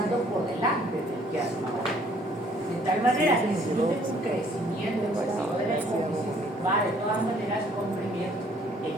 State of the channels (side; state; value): both; normal; correlation 0.60